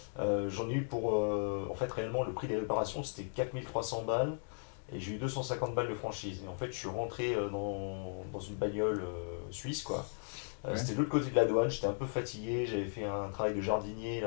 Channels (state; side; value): silent; right; digital silence